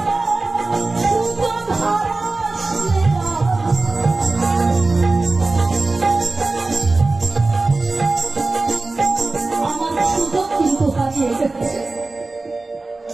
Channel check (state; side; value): quieter; left; 3.3 dB